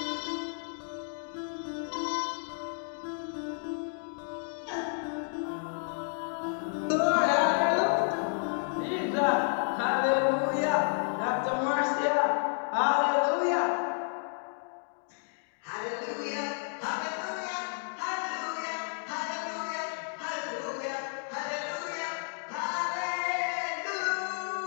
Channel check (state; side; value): silent; right; 57 dB below the other